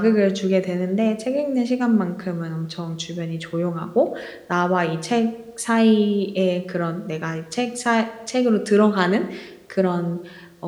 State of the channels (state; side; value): identical; both; correlation 1.00